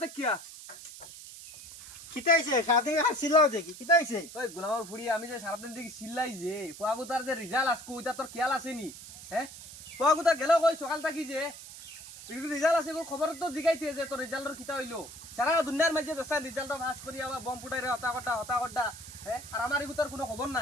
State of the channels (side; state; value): right; noise; hiss, 14 dB below the sound